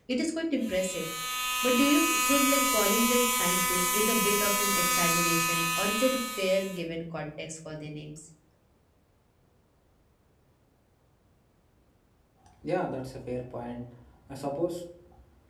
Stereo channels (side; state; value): both; identical; correlation 1.00